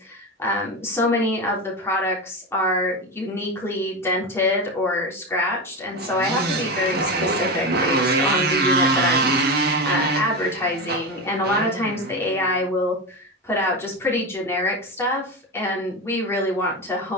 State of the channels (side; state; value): both; normal; correlation 0.19